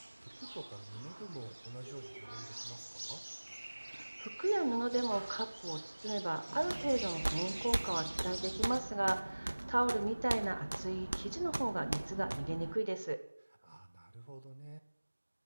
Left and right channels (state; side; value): inverted; both; correlation -1.00